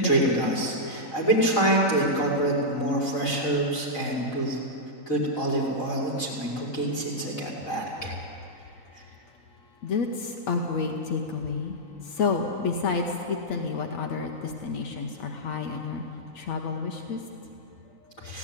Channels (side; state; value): right; late; 3.9 ms